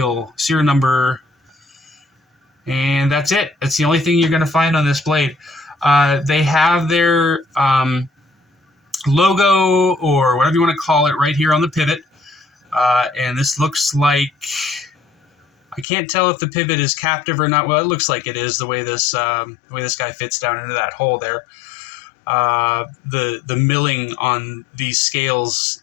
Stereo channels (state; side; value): drops out; right; at 15.9 s